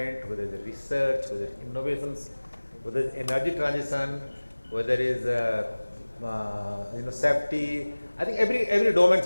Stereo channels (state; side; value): inverted; both; correlation -1.00